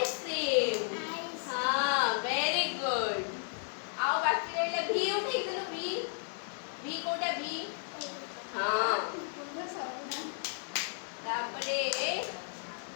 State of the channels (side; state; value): right; silent; 55 dB below the other